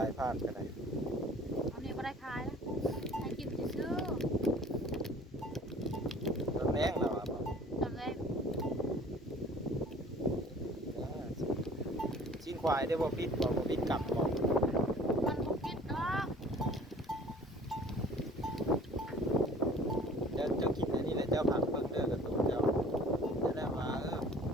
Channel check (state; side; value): normal; both; correlation 0.49